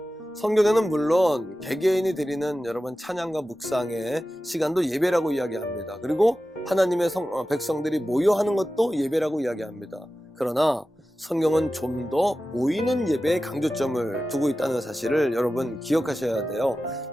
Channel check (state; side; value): normal; both; correlation 0.94